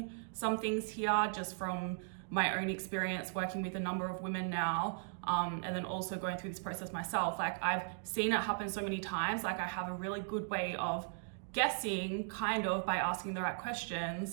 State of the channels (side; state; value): left; silent; digital silence